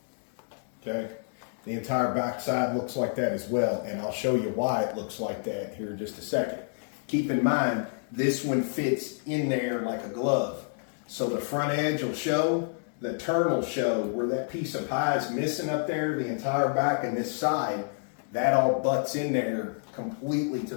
Okay. The entire back side looks like that as well. And I'll show you why it looks like that here in just a second. Keep in mind, this one fits in there like a glove. So the front edge will show, the turn will show where that piece of pie is missing up there, the entire back and this side, that all butts in there completely to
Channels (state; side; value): silent; right; digital silence